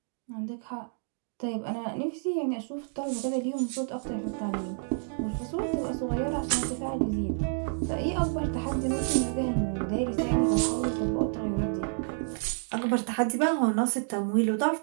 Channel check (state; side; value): silent; left; digital silence